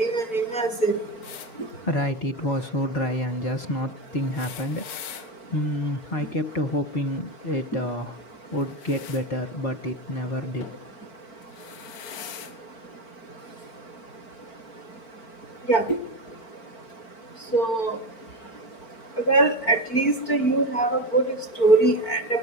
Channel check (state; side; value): late; right; 4.5 ms